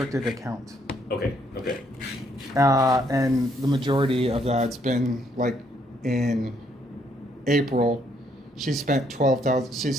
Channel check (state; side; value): normal; both; correlation 0.70